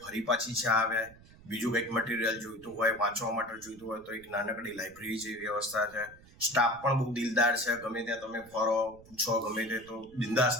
ફરી પાછી ચા આવે. બીજું કંઈક મટીરિયલ જોઈતું હોય, વાંચવા માટે જોઈતું હોય તો એક નાનકડી લાઇબ્રેરી જેવી વ્યવસ્થા છે. સ્ટાફ પણ બહુ દિલદાર છે. ગમે ત્યાં તમે ફરો, પૂછો, ગમે તે તો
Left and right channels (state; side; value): noise; right; rumble, 23 dB below the sound